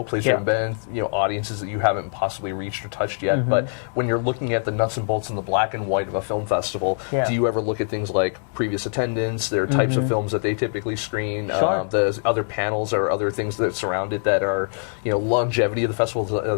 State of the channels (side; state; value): right; silent; 63 dB below the other